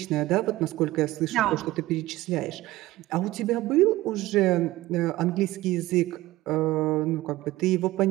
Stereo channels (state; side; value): quieter; left; 17.5 dB